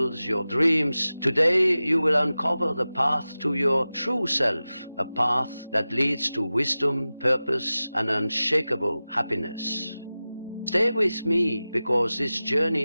your dreams? Today you will uncover the path to your true self, a path that leads to wisdom, purpose, and unshakable happiness. Stay with me, because this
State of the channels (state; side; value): inverted; both; correlation -0.96